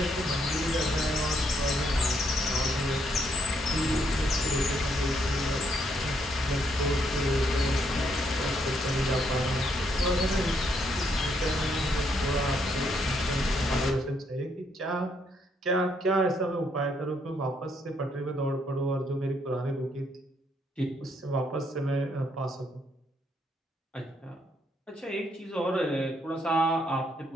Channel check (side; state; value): both; normal; correlation 0.73